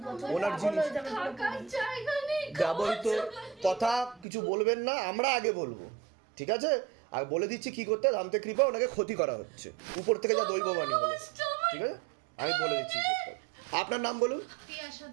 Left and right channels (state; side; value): drops out; left; at 4.2 s